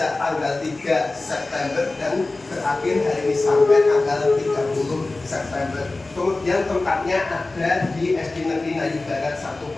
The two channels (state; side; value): quieter; right; 3.2 dB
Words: tanggal 3 September dan berakhir hari ini sampai tanggal 30 September. Kemudian tempatnya ada di SD Negeri Ngayu Barat 1